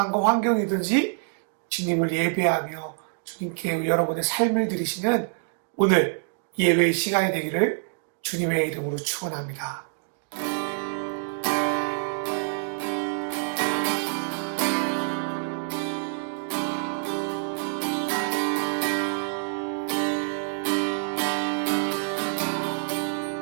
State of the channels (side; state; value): left; silent; digital silence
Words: 환경이든지 주님을 예배하며 주님께 여러분의 삶을 드리시는 오늘 예배의 시간이 되기를 주님의 이름으로 축원합니다.